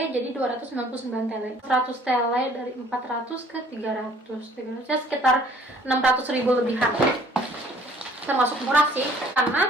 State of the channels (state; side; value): normal; both; correlation 0.57